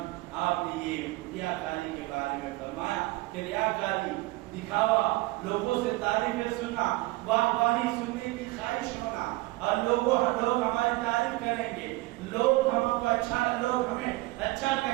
آپ نے یہ ریاکاری کے بارے میں فرمایا کہ ریاکاری دکھاوا، لوگوں سے تعریفیں سننا، واہی سننے کی خواہش ہونا، اور لوگ ہماری تعریف کریں گے، لوگ ہمیں اچھا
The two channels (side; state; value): left; quieter; 21.0 dB